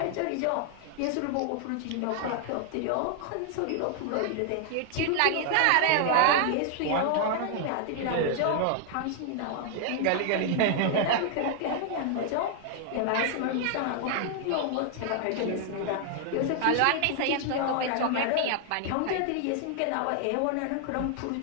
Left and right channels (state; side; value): different; both; correlation 0.00